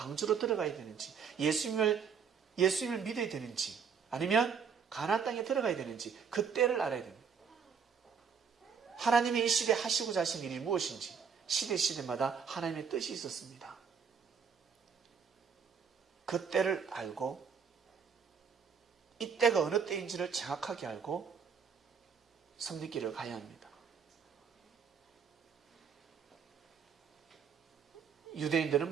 들어가야 되는지 예수님을 믿어야 되는지 아니면 가나안 땅에 들어가야 되는지 그 때를 알아야 됩니다. 하나님이 이 시대에 하시고자 하신 일이 무엇인지 시대마다 하나님의 뜻이 있었습니다. 그 때를 알고 이 때가 어느 때인지를 정확하게 알고 섬기기를 가야 합니다.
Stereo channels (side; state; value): left; quieter; 6.5 dB